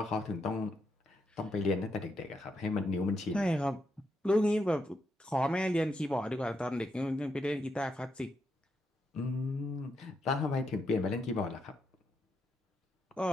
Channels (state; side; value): normal; both; correlation 0.81